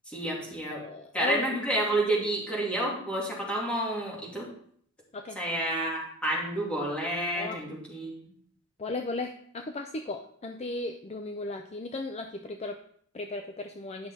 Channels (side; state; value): both; normal; correlation 0.39